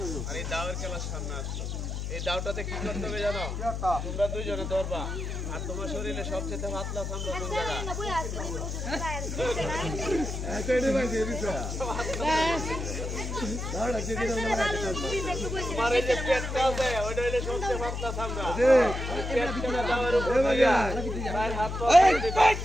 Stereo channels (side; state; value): left; noise; hum, 4 dB below the sound